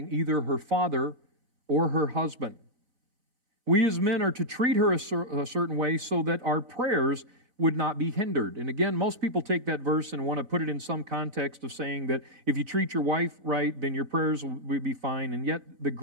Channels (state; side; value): late; left; 4.0 ms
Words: either her father or her husband. We as men are to treat her a certain way so that our prayers would not be hindered. And again, most people take that verse and want to put it in some context of saying that if you treat your wife right, then your prayers will be fine. And yet the